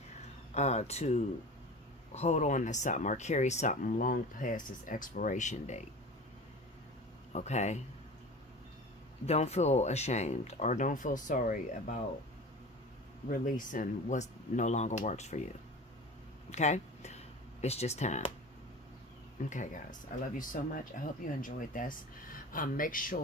to hold on to something or carry something long past its expiration date. Okay? Don't feel ashamed or don't feel sorry about releasing what no longer works for you. Okay? It's just time. Okay, guys. I love you so much. I hope you enjoyed this. Make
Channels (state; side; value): normal; both; correlation 0.36